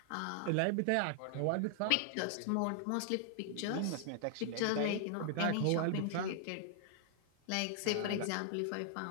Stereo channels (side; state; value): both; different; correlation 0.00